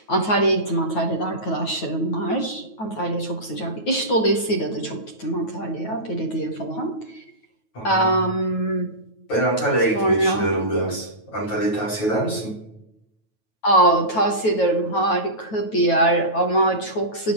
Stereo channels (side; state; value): right; late; 9.2 ms